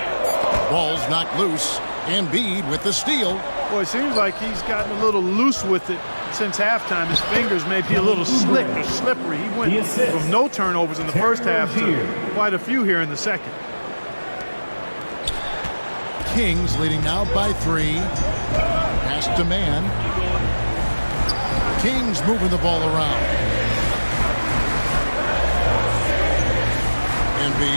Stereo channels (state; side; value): inverted; both; correlation -1.00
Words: Ball's knocked loose. Embiid with the steal. Boy, it seems like he's gotten a little loose with it since halftime. His fingers may be a little slick or slippery. He went from no turnovers in the first half to quite a few here in the second. Kings leading now by 3. Pass to man. Kings moving the ball around.